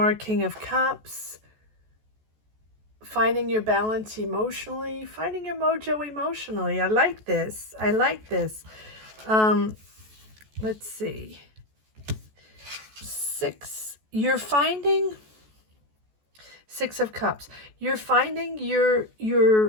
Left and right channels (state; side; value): late; left; 14 ms